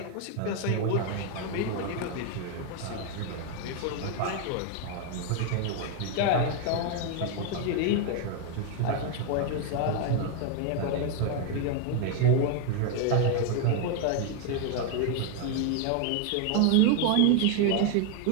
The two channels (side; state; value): both; different; correlation 0.01